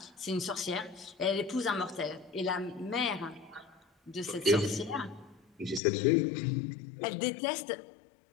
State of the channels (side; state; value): right; drops out; at 5.8 s